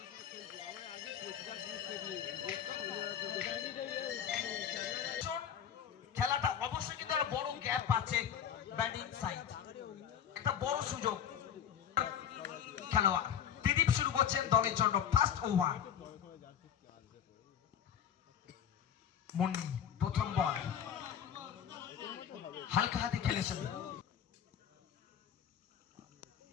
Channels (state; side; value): quieter; right; 8.9 dB